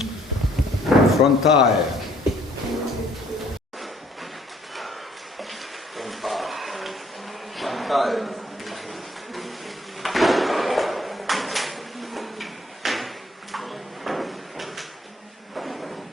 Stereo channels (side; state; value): both; normal; correlation 0.63